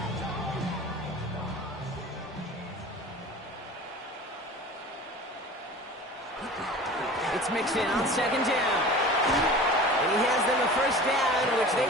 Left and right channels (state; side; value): normal; both; correlation 0.39